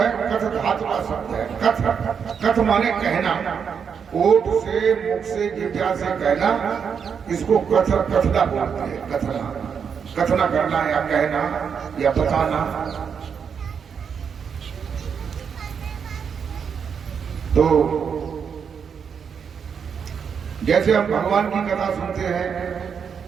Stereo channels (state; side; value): quieter; left; 6.8 dB